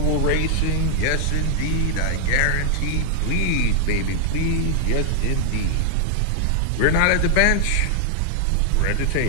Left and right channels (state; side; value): different; both; correlation -0.01